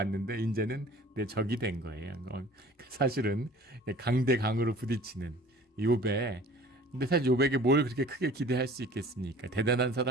이제는 내 적이 된 거예요. 사실은 강대 강으로 부딪히는 욥에, 근데 사실 욥에게 뭘 그렇게 크게 기대할 수 있겠습니까? 대단한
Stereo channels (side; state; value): both; normal; correlation 0.47